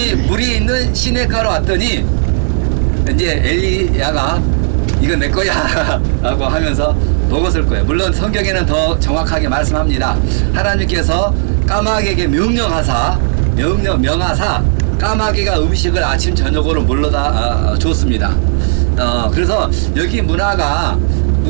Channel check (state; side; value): silent; left; digital silence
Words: 물이 있는 시냇가로 왔더니 이제 엘리야가 이거 내 거야 라고 하면서 먹었을 거예요. 물론 성경에는 더 정확하게 말씀합니다. 하나님께서 까마귀에게 명하사 까마귀가 음식을 아침 저녁으로 물러다 줬습니다. 그래서 여기 문화가